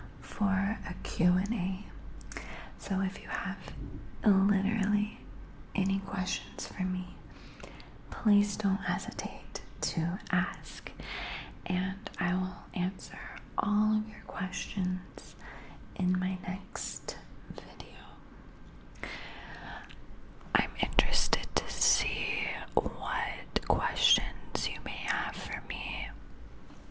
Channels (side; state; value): both; identical; correlation 1.00